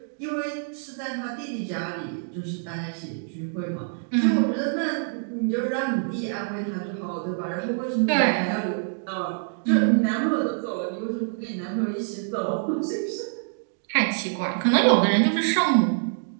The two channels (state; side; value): silent; left; digital silence